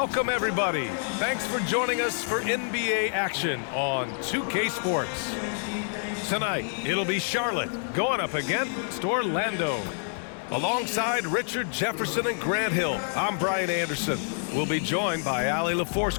everybody. Thanks for joining us for NBA action on 2K Sports. Tonight, it'll be Charlotte going up against Orlando. Alongside Richard Jefferson and Grant Hill, I'm Brian Anderson. We'll be joined by Allie LaForce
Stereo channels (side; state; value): right; silent; digital silence